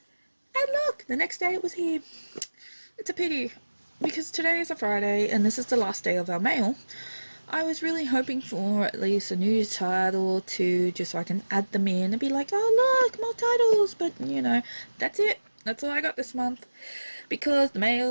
And look, the next day it was here. It's a pity, because today is a Friday and this is the last day of our mail. I was really hoping for at least a new title or two, just so I can add them in and be like, oh look, more titles, but that's it. That's all I got this month, because the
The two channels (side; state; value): both; inverted; correlation -1.00